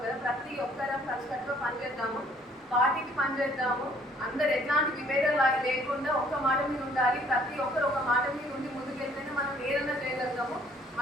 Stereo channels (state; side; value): normal; both; correlation 0.60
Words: కదా. ప్రతి ఒక్కరం కలిసికట్టుగా పనిచేద్దాము, పార్టీకి పనిచేద్దాము. అందరు ఎట్లాంటి విభేదాలు లేకుండా ఒక్క మాట మీద ఉండాలి. ప్రతి ఒక్కరు ఒక మాట మీద ఉండి ముందుకెళ్తేనే మనం ఏదైనా చేయగలుగుతాము.